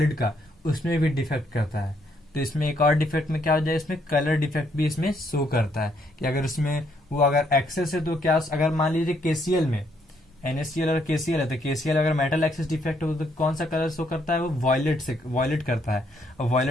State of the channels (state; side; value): normal; both; correlation 0.72